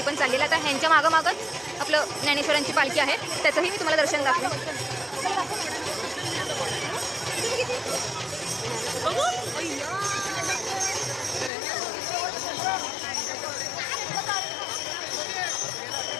पण चाललेली आहे. आता ह्यांच्या मागंच आपलं ज्ञानेश्वरांची पालखी आहे, त्याचंही मी तुम्हाला दर्शन दाखवेन.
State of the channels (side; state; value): right; drops out; at 11.5 s